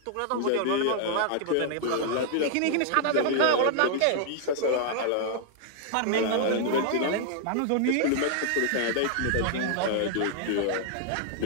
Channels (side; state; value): both; different; correlation -0.01